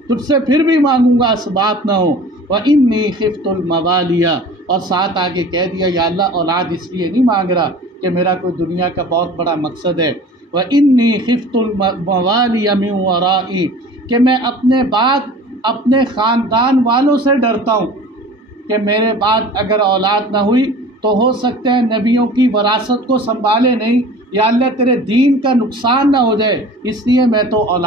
سے پھر بھی مانگوں گا اسباب نہ ہو۔ وَإِنِّي خِفْتُ الْمَوَالِيَ، اور ساتھ آگے کہہ دیا یا اللہ اولاد اس لیے نہیں مانگ رہا کہ میرا کوئی دنیا کا بہت بڑا مقصد ہے۔ وَإِنِّي خِفْتُ الْمَوَالِيَ مِنْ وَرَائِي، کہ میں اپنے بعد اپنے خاندان والوں سے ڈرتا ہوں کہ میرے بعد اگر اولاد نہ ہوئی تو ہو سکتا ہے نبیوں کی وراثت کو سنبھالے نہیں، یا اللہ تیرے دین کا نقصان نہ ہو جائے، اس لیے میں تو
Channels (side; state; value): both; normal; correlation 0.42